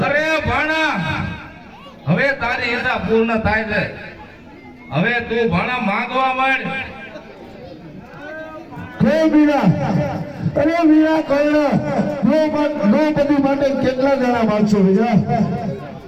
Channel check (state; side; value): identical; both; correlation 1.00